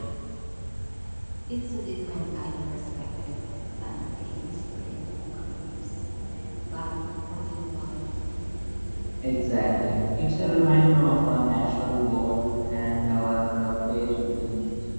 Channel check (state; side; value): inverted; both; correlation -1.00